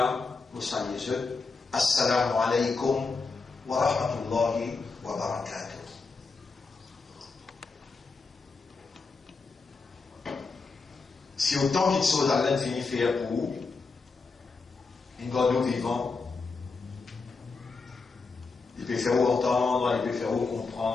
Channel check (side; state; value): right; quieter; 4.3 dB